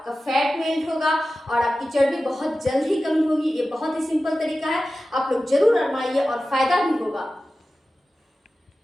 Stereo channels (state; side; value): normal; both; correlation 0.95